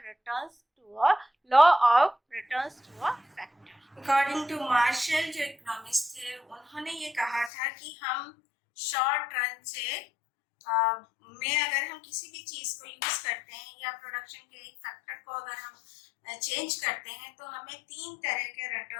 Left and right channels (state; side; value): drops out; right; at 7.5 s